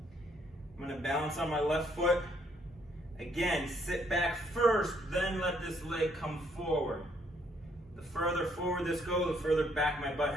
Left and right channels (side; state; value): both; normal; correlation 0.69